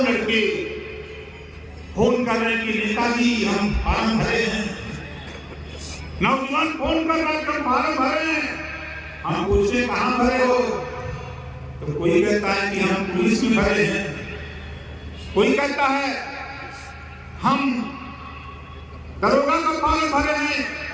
लड़के फोन कर रहे हैं कि नेताजी हम फार्म भरे हैं। नौजवान फोन कर रहे हैं हम फार्म भरे हैं। हम पूछे कहां भरे हो? तो कोई कहता है कि हम पुलिस में भरे हैं, कोई कहता है हम दरोगा का फॉर्म भरे हैं,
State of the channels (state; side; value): identical; both; correlation 1.00